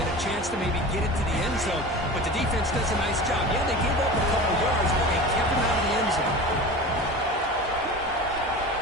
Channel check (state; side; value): normal; both; correlation 0.33